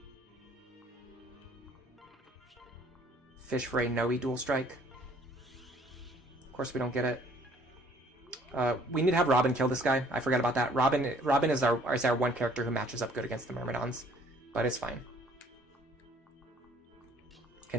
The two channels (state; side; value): normal; both; correlation 0.58